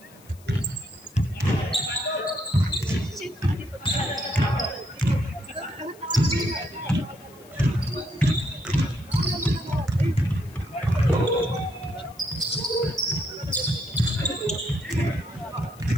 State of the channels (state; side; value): noise; left; hiss, 25 dB below the sound